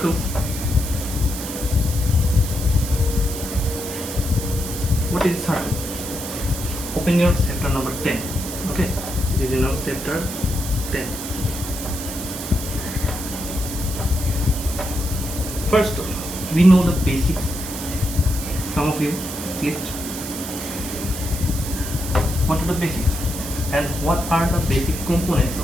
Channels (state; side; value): noise; right; hiss, 8 dB below the sound